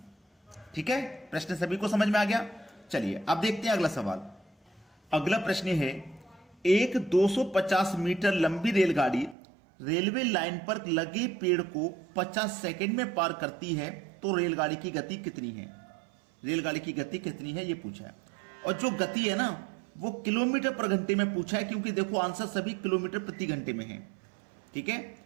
ठीक है, प्रश्न सभी को समझ में आ गया? चलिए, अब देखते हैं अगला सवाल। अगला प्रश्न है, एक 250 मीटर लंबी रेलगाड़ी रेलवे लाइन पर लगे पेड़ को 50 सेकंड में पार करती है, तो रेलगाड़ी की गति कितनी है? रेलगाड़ी की गति कितनी है ये पूछा है, और जो गति है ना वो किलोमीटर पर घंटे में पूछा है, क्योंकि देखो आंसर सभी किलोमीटर प्रति घंटे में है। ठीक है,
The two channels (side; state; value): left; drops out; at 9.3 s